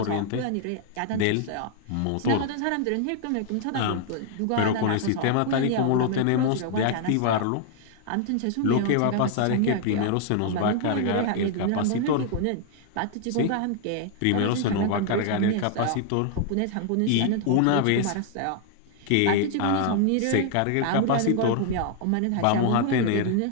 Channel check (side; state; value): both; different; correlation 0.00